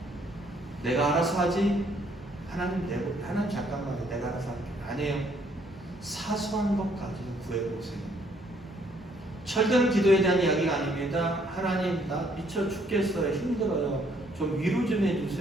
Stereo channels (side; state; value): both; normal; correlation 0.66